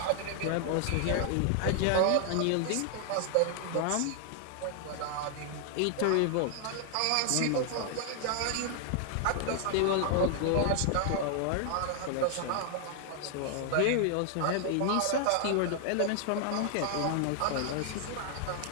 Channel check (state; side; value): different; both; correlation 0.00